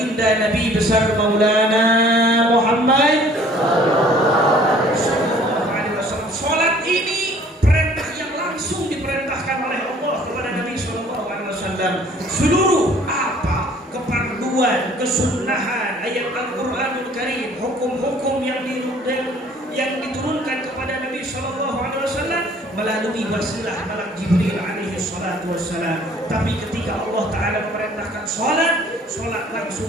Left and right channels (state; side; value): normal; both; correlation 0.55